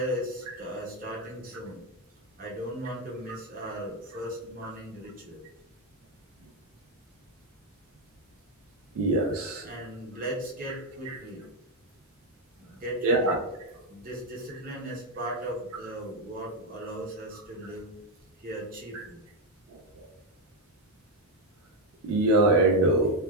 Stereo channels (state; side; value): normal; both; correlation 0.05